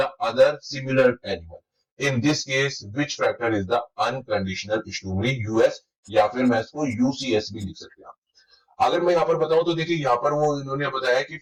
other similar animal. In this case, which factor is the unconditional stimuli? US या फिर मैं इसको UCS भी लिख सकते हैं। अगर मैं यहाँ पर बताऊं तो देखिए, यहाँ पर वो इन्होंने बताया कि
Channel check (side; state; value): both; identical; correlation 1.00